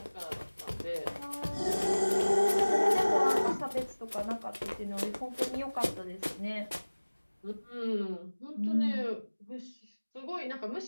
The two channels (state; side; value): inverted; both; correlation -1.00